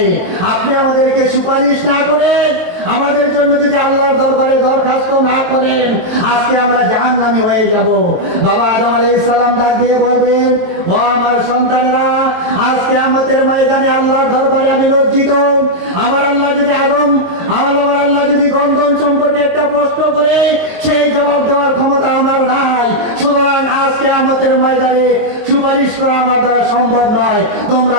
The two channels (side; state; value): left; late; 23 ms